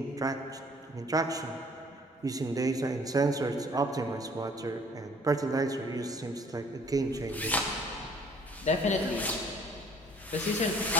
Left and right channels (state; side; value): normal; both; correlation 0.57